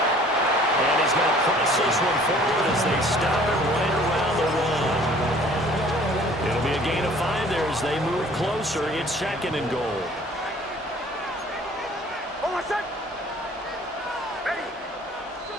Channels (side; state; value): both; normal; correlation 0.53